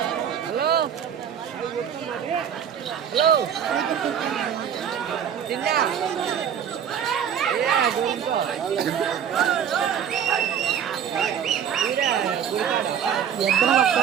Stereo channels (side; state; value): left; quieter; 8.6 dB